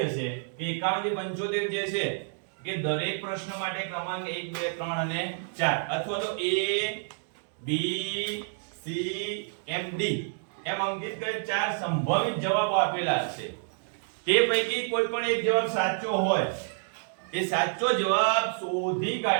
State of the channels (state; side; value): silent; left; digital silence